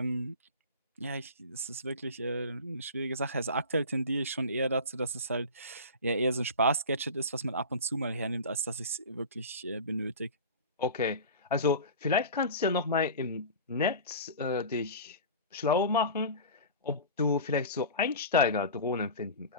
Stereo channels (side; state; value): both; inverted; correlation -0.34